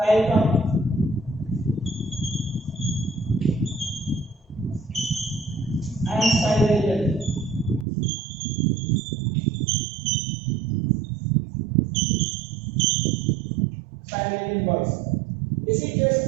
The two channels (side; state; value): left; drops out; at 7.9 s